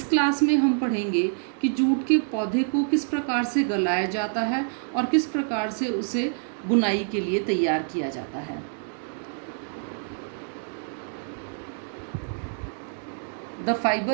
क्लास में हम पढ़ेंगे कि जूट के पौधे को किस प्रकार से गलाया जाता है और किस प्रकार से उसे बुनाई के लिए तैयार किया जाता है। द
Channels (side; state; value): left; silent; digital silence